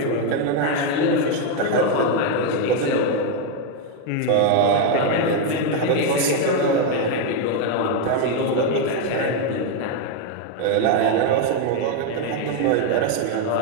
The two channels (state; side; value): different; both; correlation 0.01